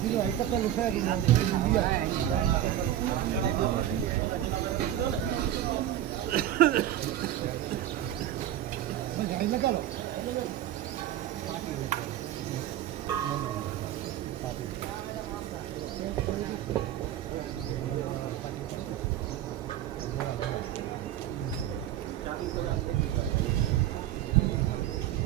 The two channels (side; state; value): left; quieter; 12.0 dB